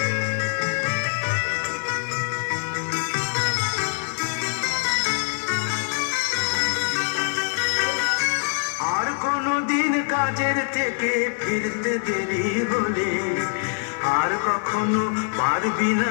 আর কোনদিন কাজের থেকে ফিরতে দেরি হলে, আর কখনো পারবি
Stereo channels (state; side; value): silent; right; 60 dB below the other